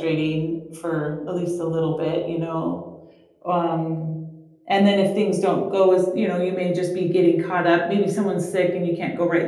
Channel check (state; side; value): identical; both; correlation 1.00